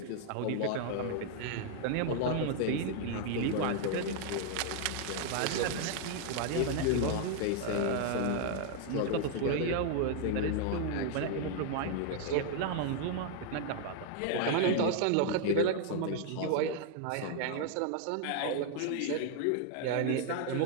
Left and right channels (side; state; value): both; different; correlation 0.00